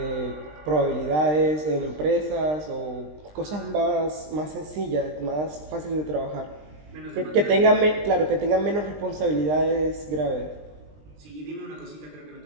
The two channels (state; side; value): late; left; 20 ms